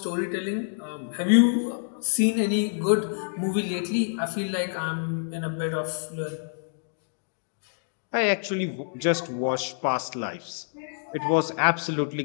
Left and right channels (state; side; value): silent; right; digital silence